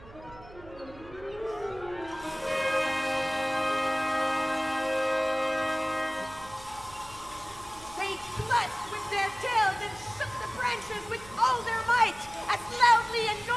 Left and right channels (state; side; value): noise; right; hum, 19 dB below the sound